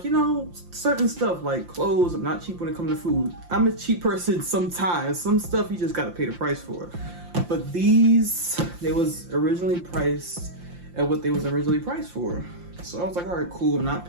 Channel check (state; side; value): late; left; 5.7 ms